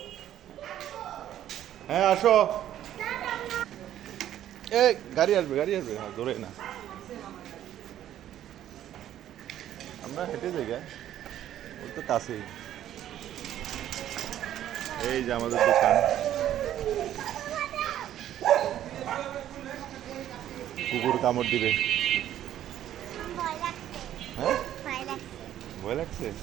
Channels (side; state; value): left; quieter; 11.7 dB